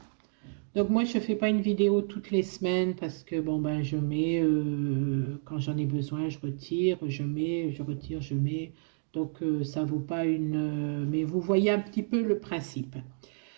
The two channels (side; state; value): left; silent; digital silence